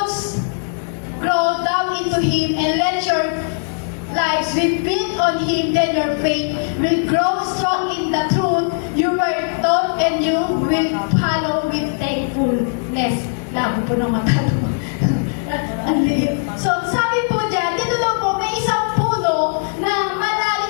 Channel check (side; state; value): right; silent; digital silence